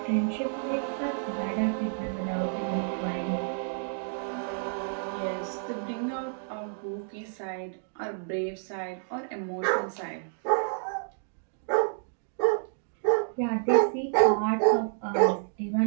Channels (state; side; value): silent; left; digital silence